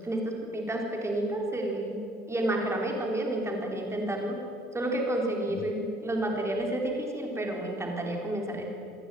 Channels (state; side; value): normal; both; correlation 0.61